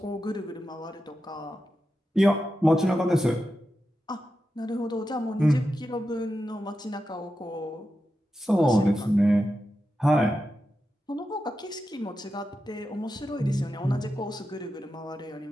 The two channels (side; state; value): both; normal; correlation 0.90